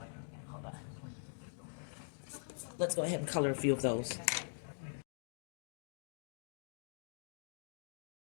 Hold on. Let's go ahead and color a few of those.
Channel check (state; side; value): silent; right; digital silence